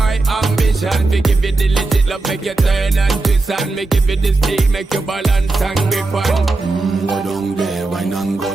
ambition. We give you the legit love, make you turn and twist. And me give you the speed, make you balance and grip on. Go down there, wine and go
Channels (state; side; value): quieter; left; 3.3 dB